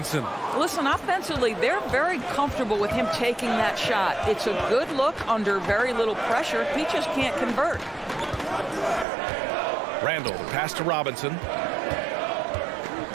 Listen, offensively, they're very comfortable with him taking that shot. It's a good look under very little pressure. He just can't convert. Randall, the pass to Robinson.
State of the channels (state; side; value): drops out; left; at 9.1 s